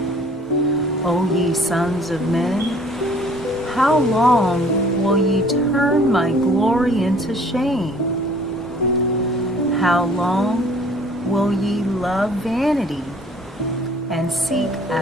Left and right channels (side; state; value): both; normal; correlation 0.54